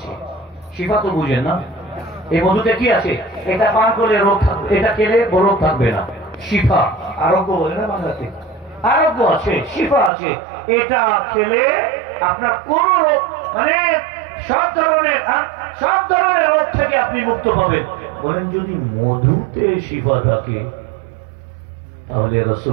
শিফা তো বুঝেন না, এই মধুতে কি আছে? এটা পান করলে রোগ থাকবে, এটা খেলে রোগ থাকবে না। শিফা, আরোগ্য বলে না বাংলাতে, আরোগ্য আছে, শিফা আছে। এটা খেলে আপনার কোন রোগ, মানে সব ধরনের রোগ থেকে আপনি মুক্ত পাবেন। বলেন যদি মধুতে শিফা থাকে তাহলে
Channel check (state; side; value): drops out; left; at 10.1 s